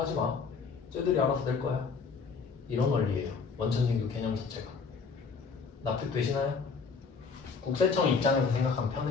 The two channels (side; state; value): right; quieter; 5.2 dB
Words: 마. 쟤들이 알아서 낼 거야. 이런 원리예요. 원천징수 개념 자체가. 납득되시나요? 국세청 입장에서 생각하면